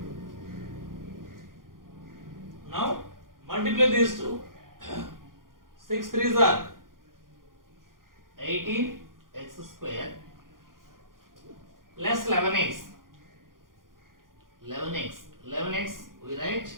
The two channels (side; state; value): left; late; 0.91 ms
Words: multiply these two. 6 3s are 18 x square plus 11x. 11x we write.